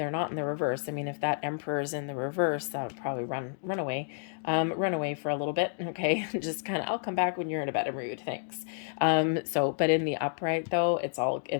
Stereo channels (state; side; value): silent; right; digital silence